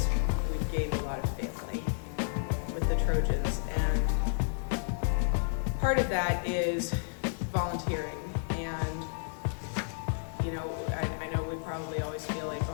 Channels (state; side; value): silent; right; digital silence